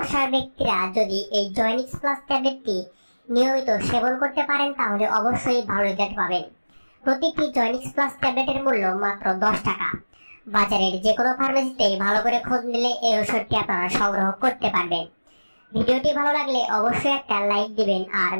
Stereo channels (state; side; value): inverted; both; correlation -1.00